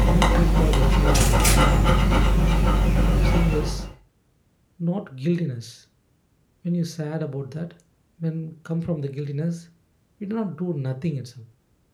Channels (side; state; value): both; identical; correlation 1.00